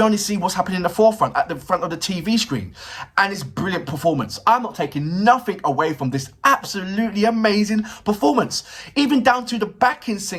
only see what's happening in the forefront, at the front of the TV screen. And it's brilliant performance. I'm not taking nothing away from this absolutely amazing performance. Even down to the backing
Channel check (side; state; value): both; identical; correlation 1.00